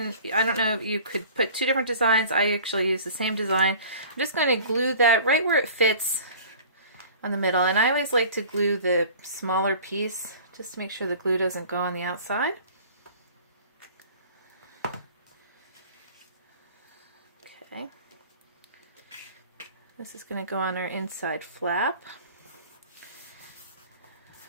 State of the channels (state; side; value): inverted; both; correlation -0.44